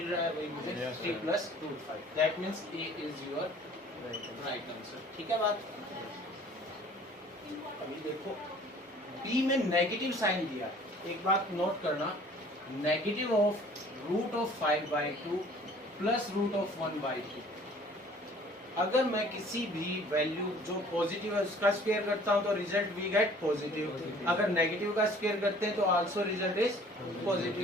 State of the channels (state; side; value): normal; both; correlation 0.52